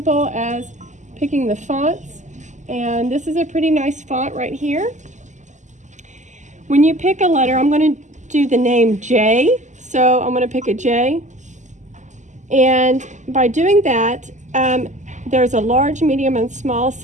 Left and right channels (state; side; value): late; left; 0.35 ms